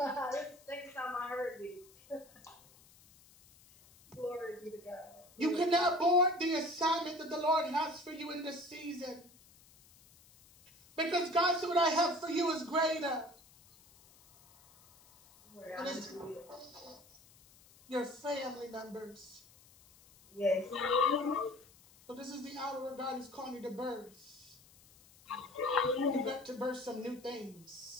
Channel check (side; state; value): left; noise; hiss, 26 dB below the sound